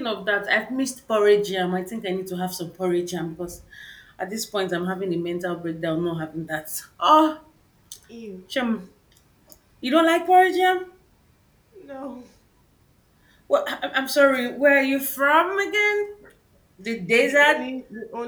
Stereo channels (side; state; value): both; identical; correlation 1.00